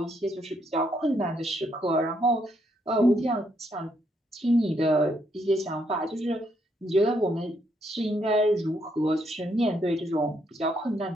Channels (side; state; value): both; normal; correlation 0.74